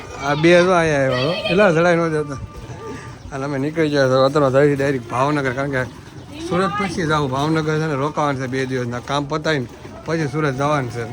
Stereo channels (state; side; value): identical; both; correlation 1.00